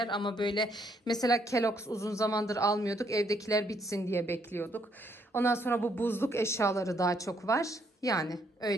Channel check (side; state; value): both; normal; correlation 0.71